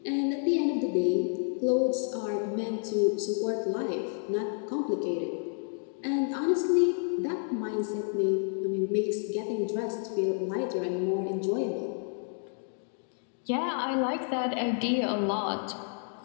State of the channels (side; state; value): right; silent; 58 dB below the other